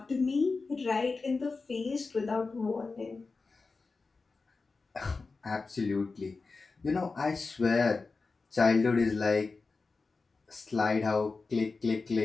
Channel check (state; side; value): quieter; right; 4.1 dB